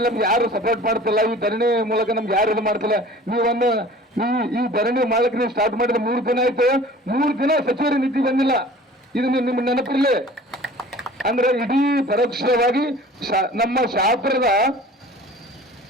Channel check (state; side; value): normal; both; correlation 0.45